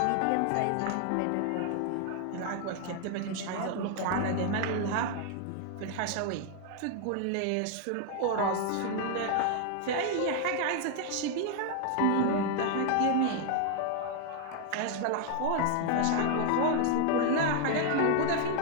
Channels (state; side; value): different; both; correlation 0.00